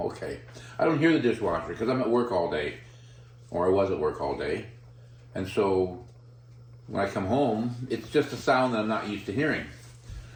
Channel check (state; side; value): identical; both; correlation 1.00